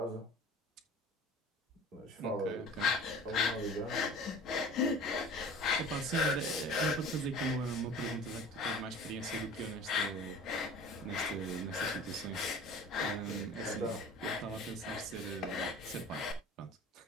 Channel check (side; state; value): both; normal; correlation 0.42